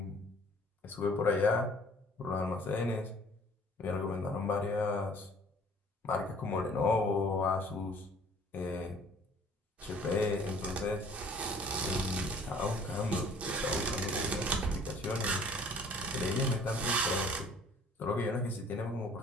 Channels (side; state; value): both; normal; correlation 0.53